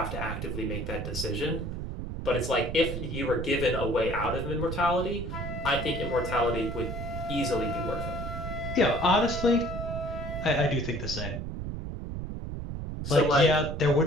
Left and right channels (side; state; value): right; noise; rumble, 5 dB below the sound